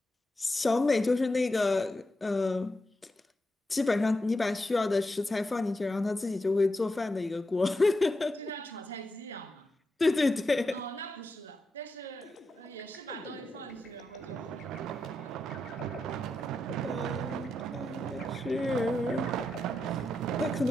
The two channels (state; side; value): normal; both; correlation 0.87